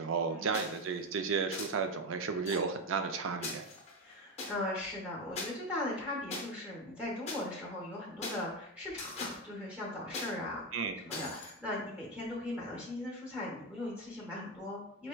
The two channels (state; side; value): normal; both; correlation 0.12